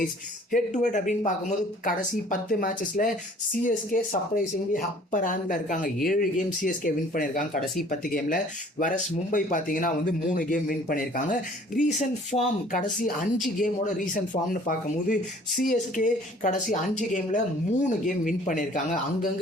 ஹெட் டு ஹெட் அப்படின்னு பார்க்கும்போது கடைசி 10 மேட்சஸில் சிஎஸ்கே சர்ப்ரைசிங்லி அப்பர் ஹேண்டில் இருக்காங்க. 7 கேம் சிஎஸ்கே வின் பண்ணியிருக்காங்க கடைசி 10 கேமில். வரஸ் மும்பை பார்த்தீங்கன்னா 3 கேம் வின் பண்ணியிருக்காங்க. ரீசன்ட் ஃபார்ம் கடைசி 5 கேமோட ரீசன்ட் ஃபார்ம்னு பார்க்கும்போது சிஎஸ்கே கடைசி 5 கேமில் 3 கேம் வின் பண்ணியிருக்காங்க.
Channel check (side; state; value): both; normal; correlation 0.53